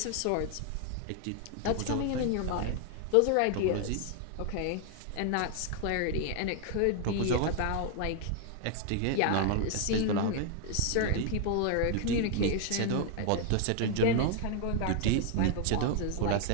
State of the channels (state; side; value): different; both; correlation 0.00